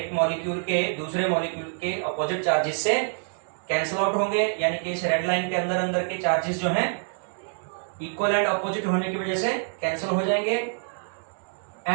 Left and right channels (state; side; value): silent; left; digital silence